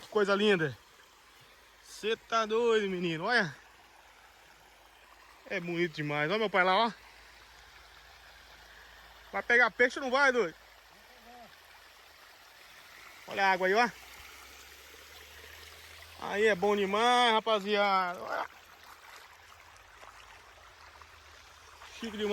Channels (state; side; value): identical; both; correlation 1.00